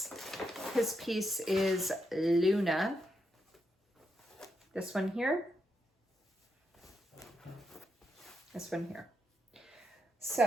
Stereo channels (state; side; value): normal; both; correlation 0.82